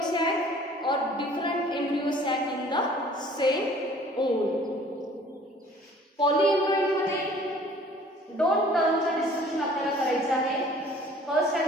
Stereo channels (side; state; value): both; normal; correlation 0.52